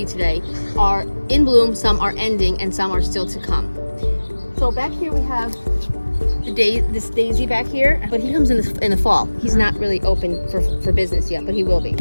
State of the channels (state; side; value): inverted; both; correlation -1.00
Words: today are in bloom, some are ending, and some are still to come. So back here we have this daisy back here, but he comes in the fall. He's not really open for business yet, but he will be.